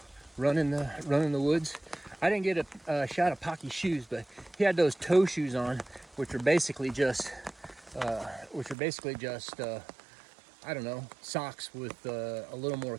running the woods. I didn't get a shot of Pocky's shoes, but he had those toe shoes on, which are basically just I don't know, socks with a little more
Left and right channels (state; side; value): drops out; left; at 8.8 s